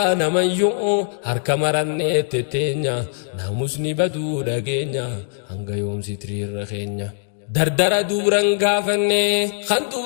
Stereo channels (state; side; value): silent; right; digital silence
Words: namayyuu harka marannee tetteenya naamusni baduu dhageenya hanga yoomsi tiriirra keenya dardara duuran gaafanne kan